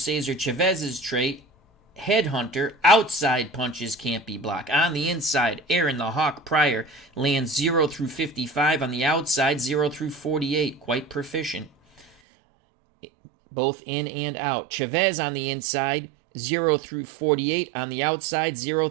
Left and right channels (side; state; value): left; drops out; at 12.1 s